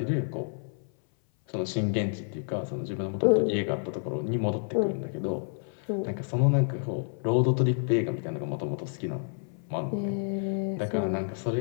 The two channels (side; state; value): right; silent; 56 dB below the other